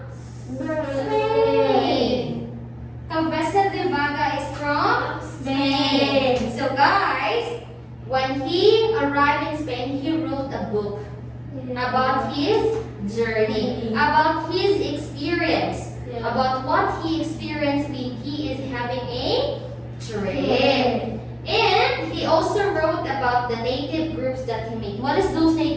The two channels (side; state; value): both; identical; correlation 1.00